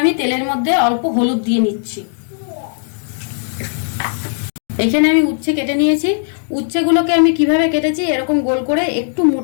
আমি তেলের মধ্যে অল্প হলুদ দিয়ে নিচ্ছি। এখানে আমি উচ্ছে কেটে নিয়েছি। উচ্ছেগুলোকে আমি কিভাবে কেটেছি, এরকম গোল করে একটু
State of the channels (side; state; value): right; silent; digital silence